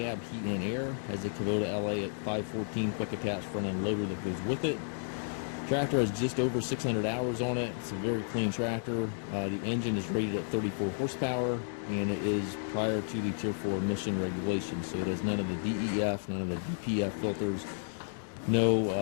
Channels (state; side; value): silent; right; digital silence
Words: heat and air. Has a Kubota LA514 quick attach front end loader that goes with it. Tractor has just over 600 hours on it. It's a very clean tractor. The engine is rated at 34 horsepower and it is prior to the Tier 4 emission regulations. So it has none of the DEF, none of the DPF filters,